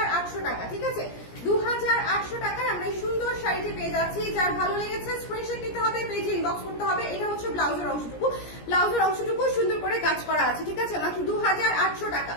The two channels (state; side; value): late; right; 17 ms